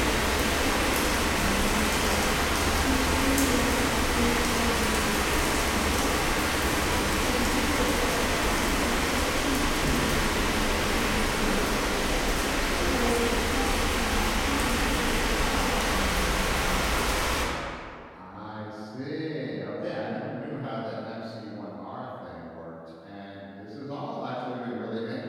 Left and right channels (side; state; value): both; identical; correlation 1.00